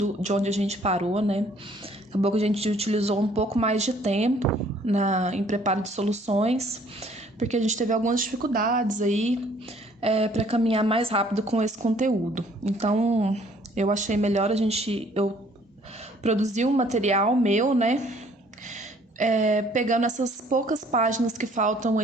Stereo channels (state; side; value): normal; both; correlation 0.59